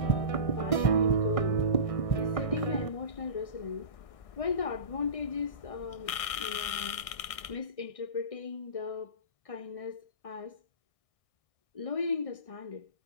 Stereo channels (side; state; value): right; late; 1.6 ms